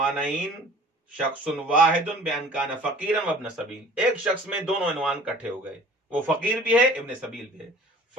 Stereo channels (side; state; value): both; normal; correlation 0.48